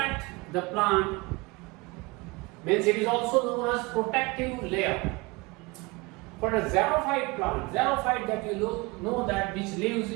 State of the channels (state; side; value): quieter; left; 24.6 dB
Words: the plant, means it is also known as protective layer. For a xerophyte plant, xerophyte that you know that which lives